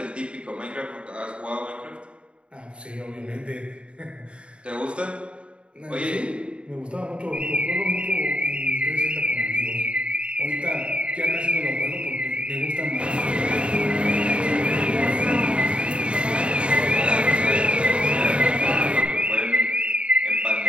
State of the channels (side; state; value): left; late; 0.057 ms